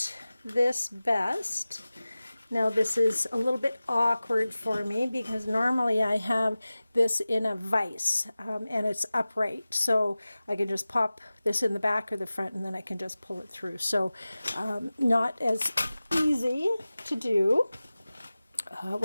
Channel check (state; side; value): inverted; both; correlation -0.97